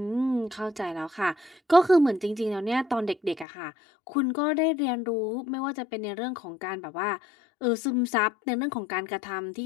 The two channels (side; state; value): right; drops out; at 3.5 s